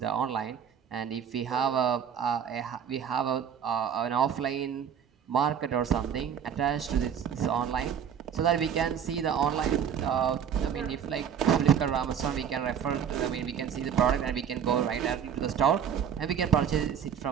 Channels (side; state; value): left; quieter; 8.1 dB